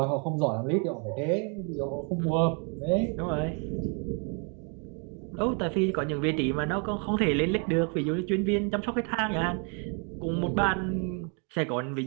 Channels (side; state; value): left; quieter; 38.0 dB